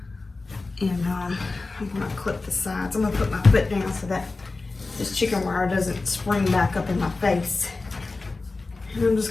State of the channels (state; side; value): quieter; right; 3.6 dB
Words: and I'm gonna clip the sides. I'm gonna put my foot down so that this chicken wire doesn't spring back up in my face And I'm